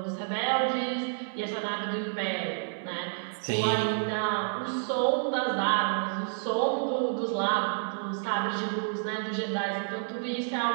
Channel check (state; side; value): silent; left; 58 dB below the other